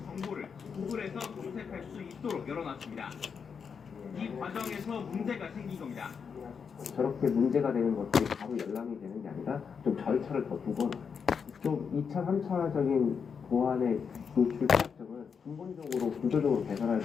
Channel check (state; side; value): quieter; right; 6.3 dB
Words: 정보를 구글에서 검색할 수 있도록 열어놨습니다. 이 과정에서 문제가 생긴 겁니다. 저렇게 문제가 되는 것들이 바로 열람이 되는 게 아니라 좀 절차를 더 두거나 좀 2차, 3차적인 보안의 노출 피약점을 근본적으로 구조적으로 개선할